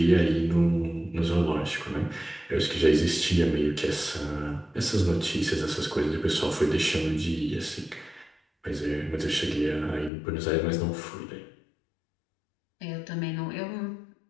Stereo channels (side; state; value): right; drops out; at 10.1 s